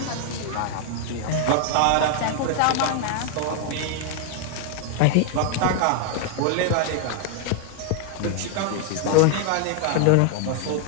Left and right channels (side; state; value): both; different; correlation 0.00